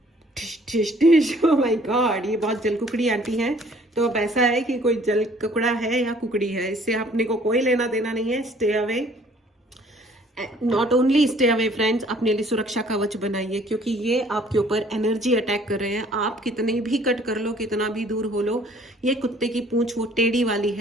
टिश टिश टिश, ओह माय गॉड, ये बहुत जल कुकड़ी आंटी हैं। तो अब ऐसा है कि कोई जल कुकड़ा है या कुकड़ी है, इससे अपने को कोई लेना देना नहीं है। Stay away, not only stay away friends, अपने लिए सुरक्षा कवच बनाइए, क्योंकि ये आपके ऊपर एनर्जी अटैक कर रहे हैं। आप कितने भी कट कर लो, कितना भी दूर हो लो, ये कुत्ते की पूंछ वो टेढ़ी वाली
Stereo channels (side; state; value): both; normal; correlation 0.57